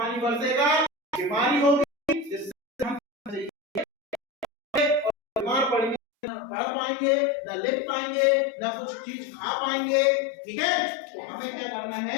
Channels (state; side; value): drops out; right; at 6.0 s